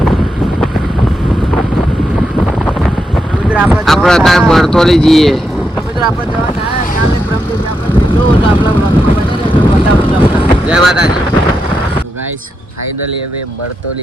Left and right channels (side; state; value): both; normal; correlation 0.84